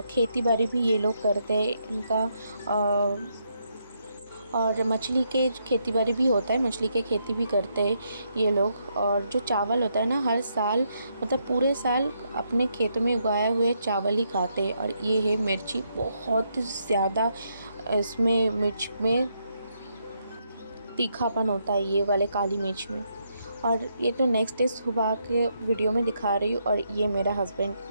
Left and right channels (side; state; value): both; inverted; correlation -0.77